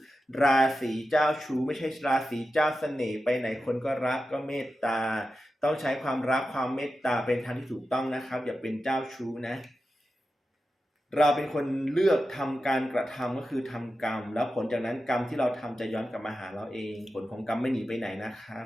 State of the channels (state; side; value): normal; both; correlation 0.91